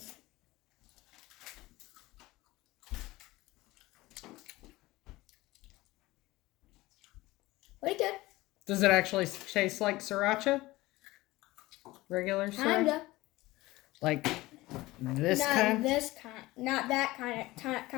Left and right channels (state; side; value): quieter; right; 19.2 dB